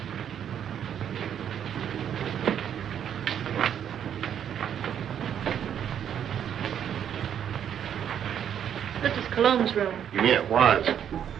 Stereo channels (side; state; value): left; quieter; 9.1 dB